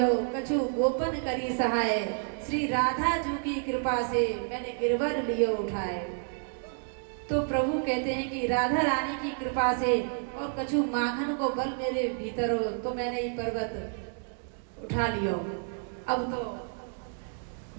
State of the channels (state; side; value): silent; left; 58 dB below the other